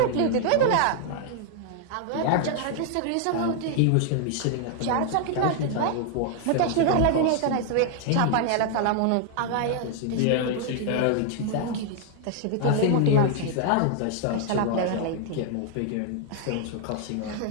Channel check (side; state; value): both; different; correlation 0.00